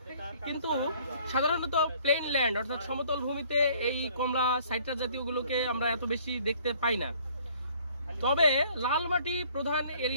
কিন্তু সাধারণত প্লেন ল্যান্ড অর্থাৎ সমতল ভূমিতে এই কমলা সাইট্রাস জাতীয়গুলোকে আমরা এত বেশি দেখতে পাই না। তবে লাল মাটি প্রধান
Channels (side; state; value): both; inverted; correlation -0.58